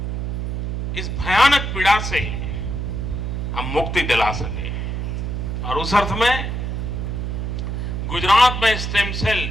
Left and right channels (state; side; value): noise; right; hum, 2 dB below the sound